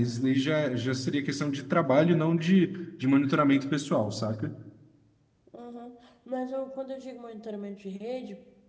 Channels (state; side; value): identical; both; correlation 1.00